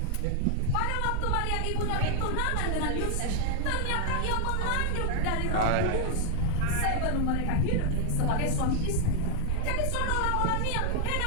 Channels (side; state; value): both; different; correlation 0.00